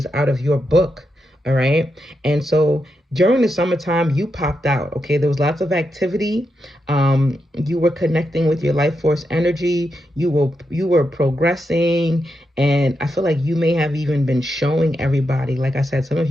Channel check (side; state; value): both; normal; correlation 0.85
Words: out of your book. All right. And so during the summertime, you popped out. Okay. There was lots of activity. You were connecting with your life force energy. You were progressing. And I feel like you may have even been showing everybody. Like I said, some of